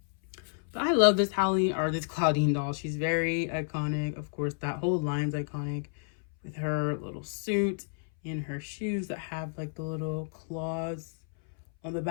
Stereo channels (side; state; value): right; silent; 58 dB below the other